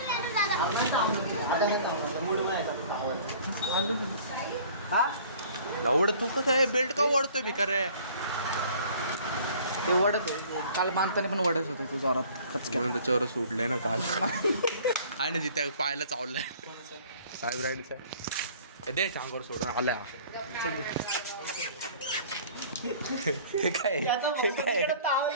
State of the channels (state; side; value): inverted; both; correlation -0.50